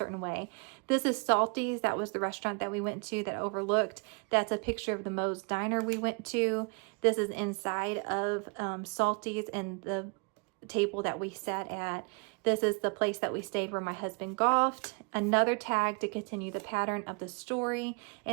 way. This is Salty's. That was the restaurant that we went to that overlooked. That's a picture of the Moe's Diner we went to. This is inside of Salty's and the table that we sat at. This is the place that we stayed where my husband golfed. Another tag to continue the pattern of the story.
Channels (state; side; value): quieter; left; 35.3 dB